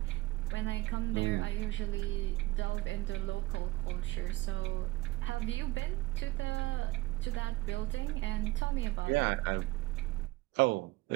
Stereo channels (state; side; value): quieter; left; 19.5 dB